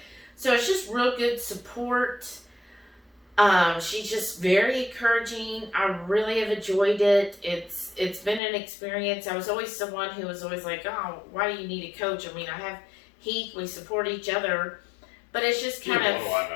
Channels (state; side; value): drops out; right; at 8.4 s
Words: So it's just real good support. She's just very encouraging. I really have enjoyed it. It's been an experience. I was always someone who was always like, oh, why do you need a coach? I mean, I have Heath. We support each other. But it's just kind of... What do